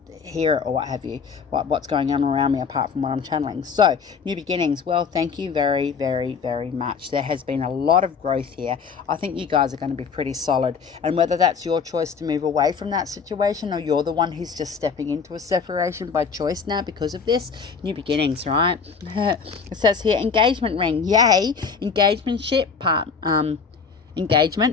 hear it or what have you, what's going on around me apart from what I'm channeling. So new beginnings, well, thank you very, very, very much. There has been a lot of growth here. I think you guys are going to be pretty solid, and whether that's your choice to move away from that situation, or you're the one who's just stepping into a separation by choice now because of this, new beginnings, right? It says here, engagement ring. Yay. Engagement,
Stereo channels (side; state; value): right; quieter; 5.7 dB